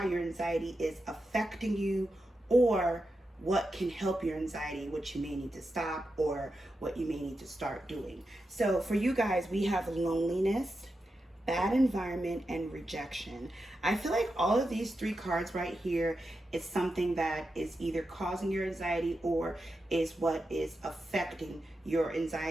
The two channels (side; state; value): both; normal; correlation 0.89